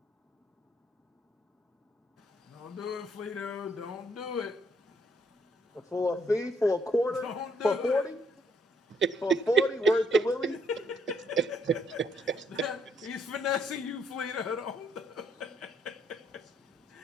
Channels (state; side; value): normal; both; correlation 0.70